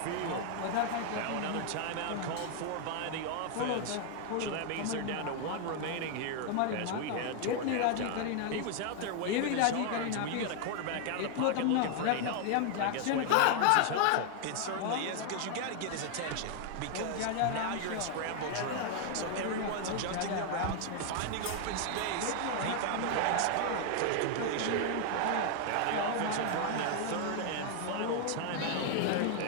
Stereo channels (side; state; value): both; different; correlation 0.00